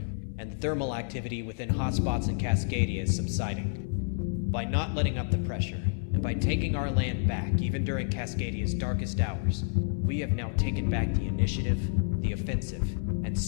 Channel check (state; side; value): silent; right; digital silence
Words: and thermal activity within hotspots in Cascadia is subsiding. By not letting up the pressure, and by taking our land back even during Cascadia's darkest hours, we have now taken back the initiative, the offensive, and